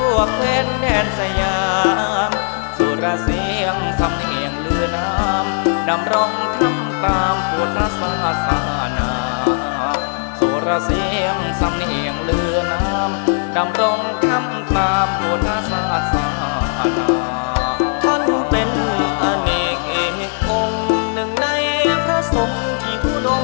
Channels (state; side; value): silent; right; 65 dB below the other